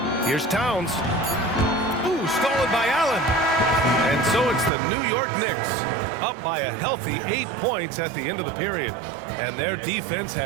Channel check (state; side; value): drops out; left; at 4.7 s